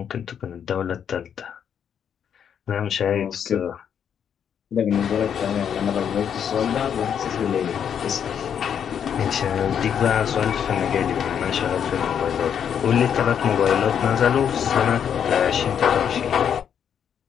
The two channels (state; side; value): quieter; right; 8.3 dB